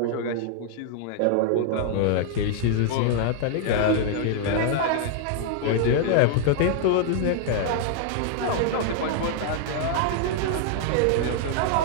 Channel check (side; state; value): both; different; correlation 0.00